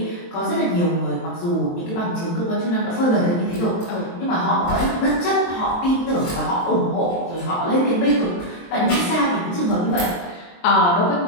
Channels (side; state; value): right; late; 23 ms